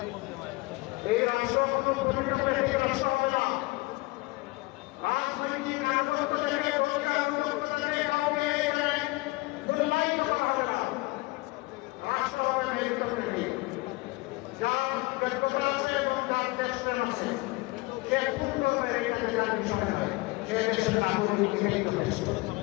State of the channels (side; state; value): right; quieter; 23.0 dB